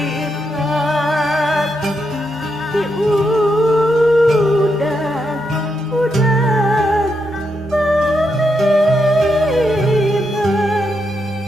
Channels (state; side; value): normal; both; correlation 0.82